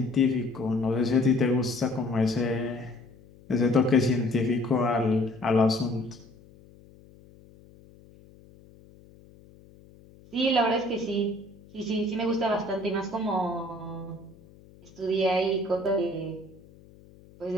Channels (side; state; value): left; noise; hum, 24 dB below the sound